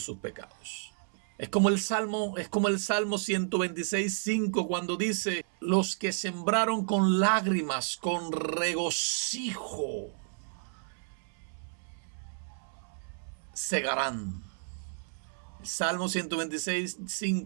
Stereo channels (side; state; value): left; silent; 57 dB below the other